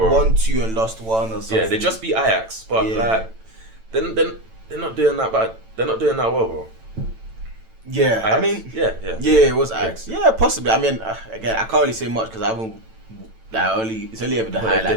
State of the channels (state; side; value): late; left; 9.0 ms